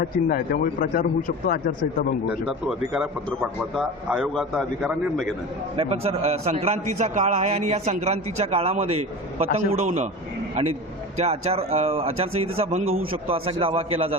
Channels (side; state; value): both; normal; correlation 0.31